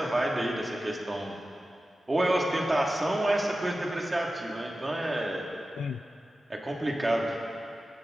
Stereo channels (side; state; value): both; normal; correlation 0.94